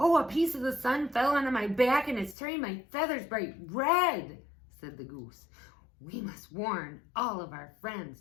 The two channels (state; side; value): drops out; right; at 2.4 s